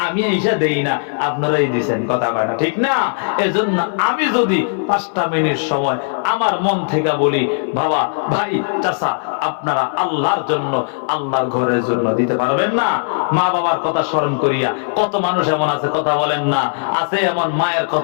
আমি এইসা দেই না, আপনারাই দিচ্ছেন, কথা কয় না, ঠিক না? এজন্য আমি যদি 5টা মিনিট সময় আমার মন থেকে বলি, বাবা, ভাই, চাচা, আপনারা আল্লাহর জন্য, আল্লাহর ঘরের জন্য দিতে পারবেন না? মা বাবার কথা স্মরণ করিয়া কত মানুষ এমন আছে কথা বলেন না, আছে এমন মায়ের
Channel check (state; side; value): silent; right; 67 dB below the other